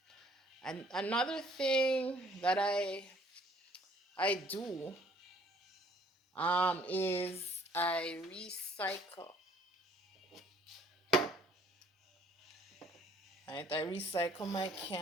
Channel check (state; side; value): normal; both; correlation 0.60